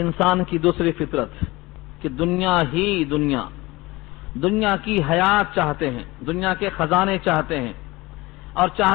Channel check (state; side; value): quieter; right; 21.2 dB